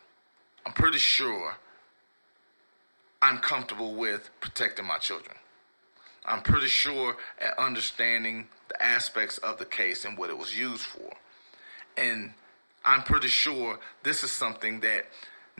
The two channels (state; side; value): inverted; both; correlation -1.00